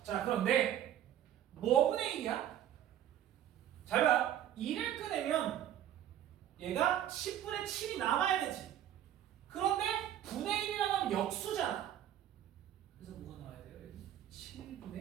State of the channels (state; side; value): quieter; left; 11.2 dB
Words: 자, 그런데 뭐분의 1이야? 잘 봐. 2를 꺼내면 얘가 10분의 7이 남아야 되지. 그런데 분의 1이라고 하면 역수잖아. 그래서 뭐가 나와야 돼요? 여기